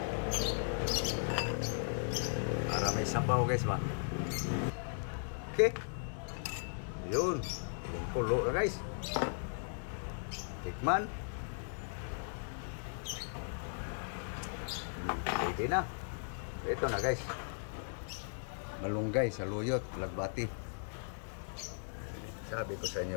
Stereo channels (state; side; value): silent; right; digital silence